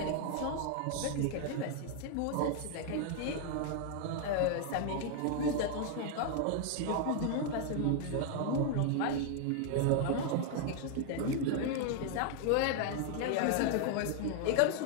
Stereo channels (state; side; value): different; both; correlation 0.00